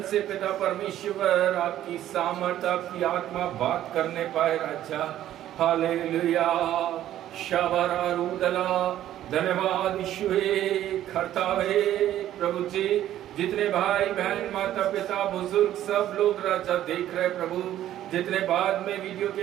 से पिता परमेश्वर आपकी सामर्थ, आपकी आत्मा बात करने पाए राजा। हालेलुया, शबरा रूदला, धन्यवाद यीशुए खरतावे प्रभु जी। जितने भाई बहन, माता पिता, बुजुर्ग सब लोग राजा देख रहे प्रभु, जितने बाद में वीडियो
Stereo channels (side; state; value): left; quieter; 12.4 dB